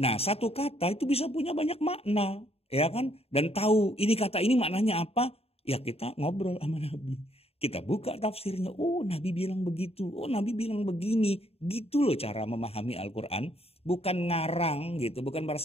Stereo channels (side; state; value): right; late; 0.29 ms